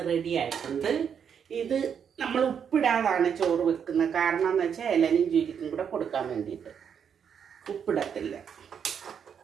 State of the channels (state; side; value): quieter; left; 7.6 dB